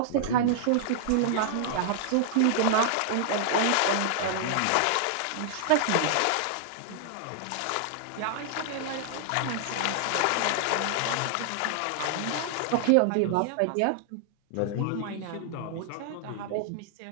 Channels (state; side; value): different; both; correlation -0.01